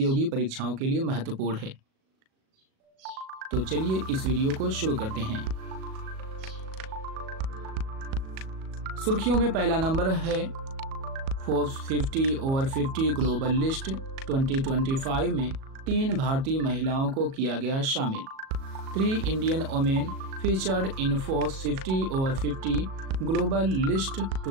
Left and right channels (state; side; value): late; left; 37 ms